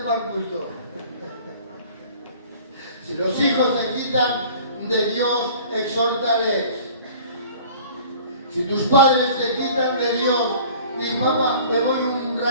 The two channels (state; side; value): inverted; both; correlation -0.47